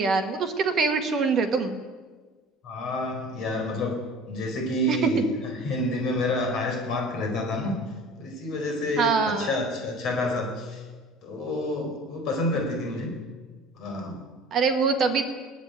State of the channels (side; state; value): both; normal; correlation 0.44